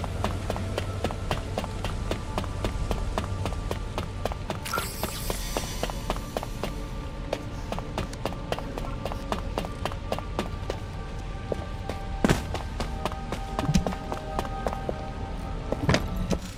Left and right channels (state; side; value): identical; both; correlation 1.00